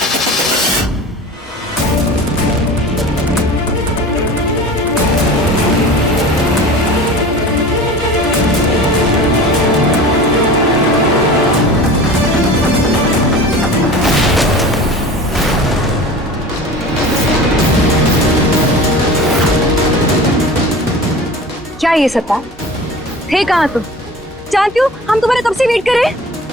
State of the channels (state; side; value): normal; both; correlation 0.37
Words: क्या ये सत्ता थे? कहाँ तुम? जानती हो हम तुम्हारे कब से वेट कर रहे हैं।